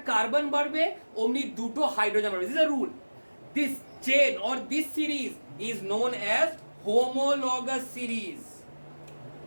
কার্বন বাড়বে অমনি দুটো হাইড্রোজেন বাড়বে। This is a rule. This chain or this series is known as homologous series.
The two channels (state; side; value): inverted; both; correlation -1.00